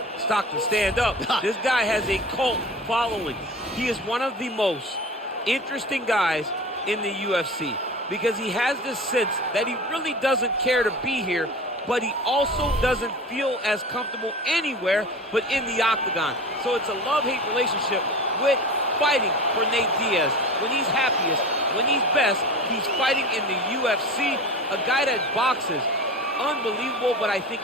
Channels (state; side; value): normal; both; correlation 0.34